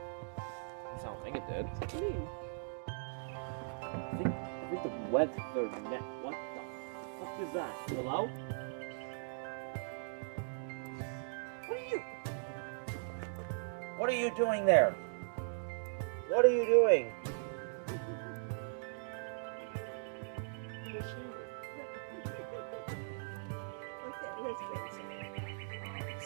At least I don't think it did. It's clean. I think the weather net. What the fuck is that? Hello? What are you doing there? What are you doing?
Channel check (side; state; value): left; silent; digital silence